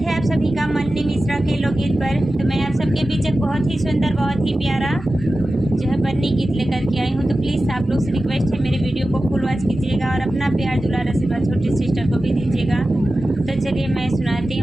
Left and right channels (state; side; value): normal; both; correlation 0.94